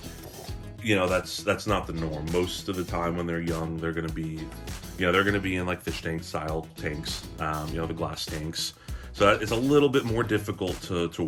You know, that's not the norm. Most of the time when they're young, they're gonna be, you know, they're gonna be in like fish tank style tanks, you know, the glass tanks. So it's a little bit more difficult to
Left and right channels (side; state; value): both; identical; correlation 1.00